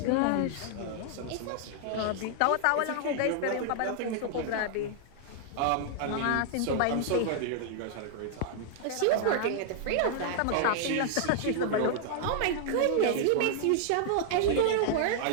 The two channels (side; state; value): both; different; correlation -0.01